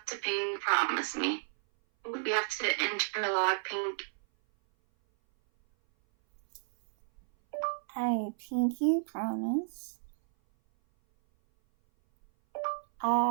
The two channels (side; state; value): left; silent; 56 dB below the other